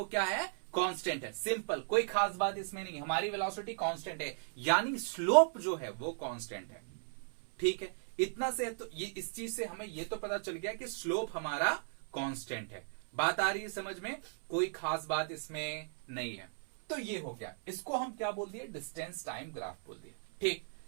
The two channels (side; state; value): left; silent; 53 dB below the other